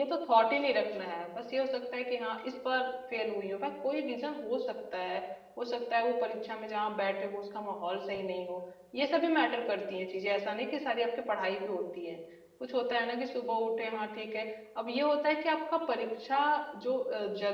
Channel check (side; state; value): both; identical; correlation 1.00